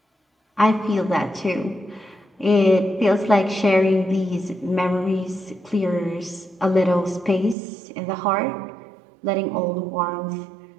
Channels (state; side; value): drops out; left; at 7.6 s